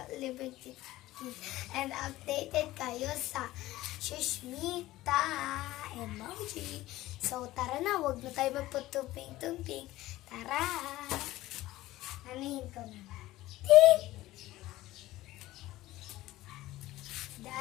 and updated kayo sa Shushmita emoji. So, tara na. Huwag na tayo magputumping-tumping. Tara! Anahin ko na. Tick!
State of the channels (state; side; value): quieter; right; 16.6 dB